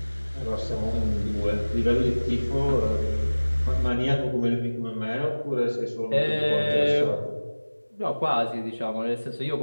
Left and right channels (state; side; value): inverted; both; correlation -1.00